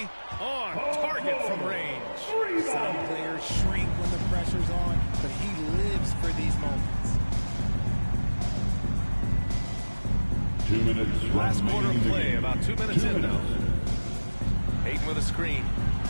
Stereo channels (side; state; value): both; inverted; correlation -1.00